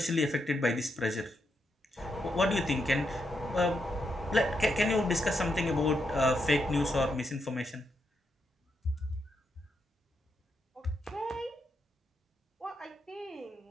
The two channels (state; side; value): normal; both; correlation 0.81